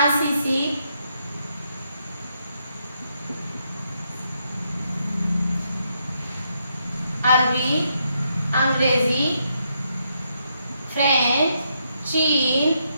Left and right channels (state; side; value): inverted; both; correlation -0.78